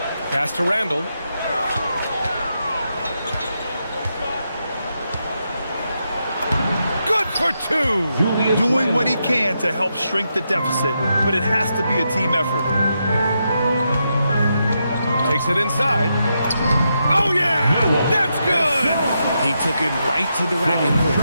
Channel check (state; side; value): inverted; both; correlation -0.83